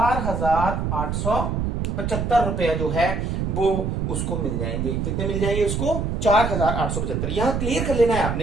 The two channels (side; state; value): right; noise; rumble, 1 dB below the sound